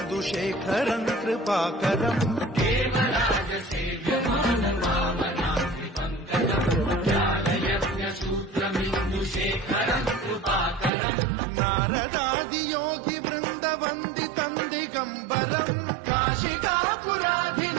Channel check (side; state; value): left; drops out; at 10.9 s